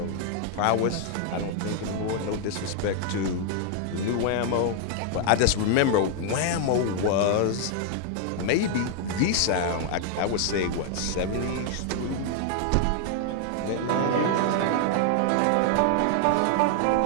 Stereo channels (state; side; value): different; both; correlation 0.00